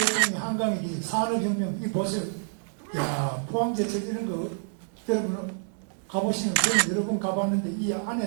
한강에 이 산업혁명, 이 보세요. 야, 포항제철 이런 거, 여러분 가보시면, 저는 여러 번 가봤는데, 이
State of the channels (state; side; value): silent; left; 59 dB below the other